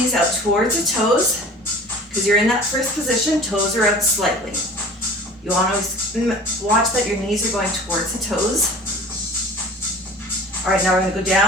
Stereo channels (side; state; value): both; normal; correlation 0.43